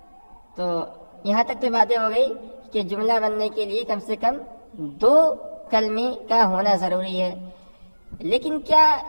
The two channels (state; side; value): inverted; both; correlation -1.00